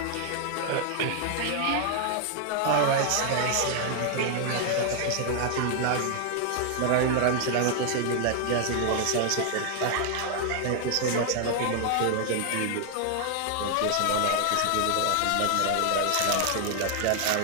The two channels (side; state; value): both; different; correlation 0.00